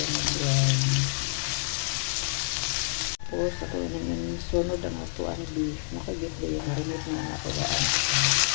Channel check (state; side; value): silent; right; digital silence